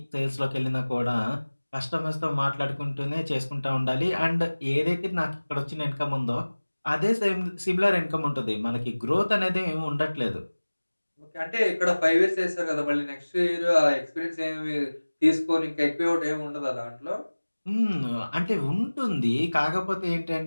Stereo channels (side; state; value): both; inverted; correlation -1.00